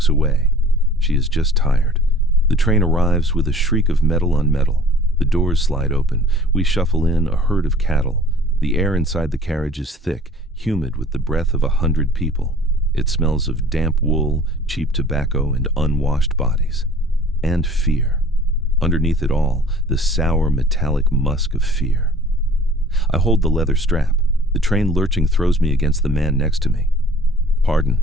away. She is just tired. The train arrives with a shriek of metal on metal. The doors slide open. We shuffle in, a herd of cattle. The air inside the carriage is thick, humid with the breath of 100 people. It smells of damp wool, cheap tobacco, and unwashed bodies. And fear. Underneath it all, the sour metallic musk of fear. I hold the leather strap. The train lurching throws me against the man next to me. "Pardon,"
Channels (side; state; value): both; normal; correlation 0.50